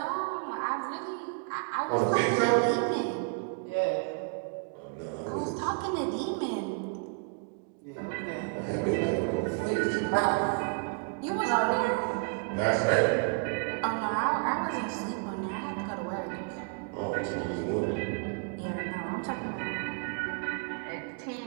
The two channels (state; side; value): quieter; left; 36.9 dB